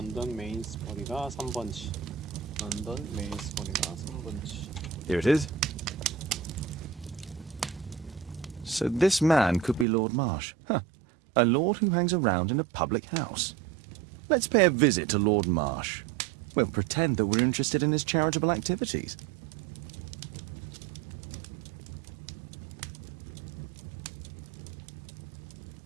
메인스버리가 3번지. 런던 메인스버리가 3번지. Here it is. So this man could be Lord Marsh. Huh. A lord who hangs around in a public house. Let's pay a visit to Lord Marsh. We'll pretend that we're interested in his charitable activities.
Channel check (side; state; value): left; drops out; at 9.9 s